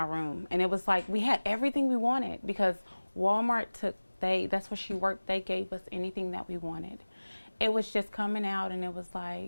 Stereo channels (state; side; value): inverted; both; correlation -1.00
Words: room. And it was like we had everything we wanted, because Walmart that's where she worked. They gave us anything that we wanted. It was just coming out, and it was